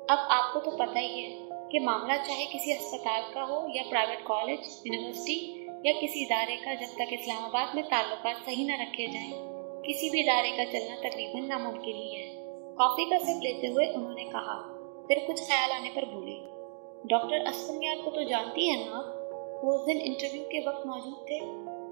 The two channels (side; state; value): left; silent; digital silence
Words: اب آپ کو تو پتہ ہی ہے کہ معاملہ چاہے کسی ہسپتال کا ہو یا پرائیویٹ کالج، یونیورسٹی یا کسی ادارے کا، جب تک اسلام آباد میں تعلقات صحیح نہ رکھے جائیں کسی بھی ادارے کا چلنا تقریباً ناممکن ہی ہے۔ کافی کا سپ لیتے ہوئے انہوں نے کہا، پھر کچھ خیال آنے پر بولے، ڈاکٹر اسفندیار کو تو جانتی ہیں نا آپ؟ وہ اس دن انٹرویو کے وقت موجود تھے۔